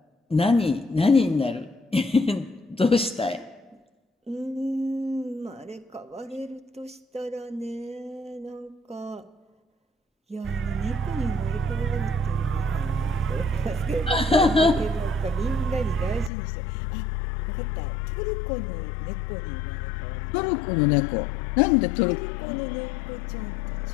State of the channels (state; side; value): drops out; right; at 16.3 s